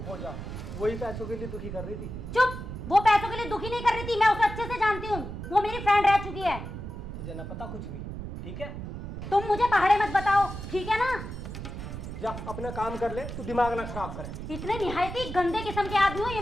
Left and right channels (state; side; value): noise; right; rumble, 8 dB below the sound